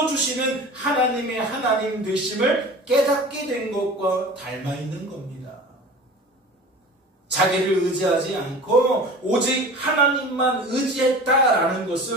하나님의 하나님 되심을 깨닫게 된 것과 닮아 있는 겁니다. 자기를 의지하지 않고 오직 하나님만 의지했다라는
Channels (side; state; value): both; normal; correlation 0.38